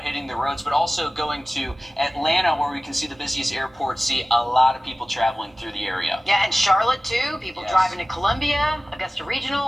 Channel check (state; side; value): normal; both; correlation 0.96